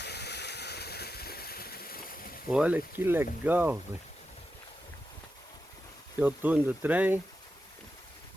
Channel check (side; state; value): both; normal; correlation 0.89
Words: Olha que legal, velho. Aqui é o túnel do trem.